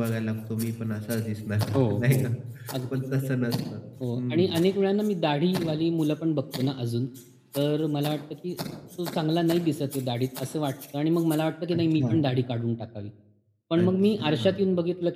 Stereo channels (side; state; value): both; identical; correlation 1.00